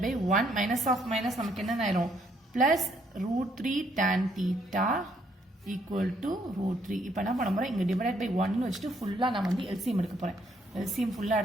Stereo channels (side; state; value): both; normal; correlation 0.70